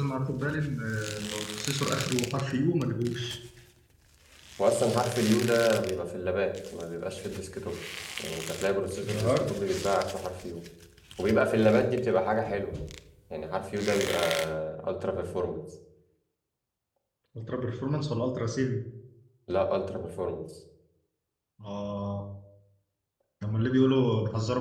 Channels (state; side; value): identical; both; correlation 1.00